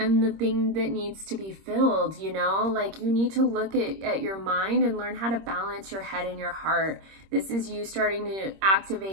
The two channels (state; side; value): late; left; 26 ms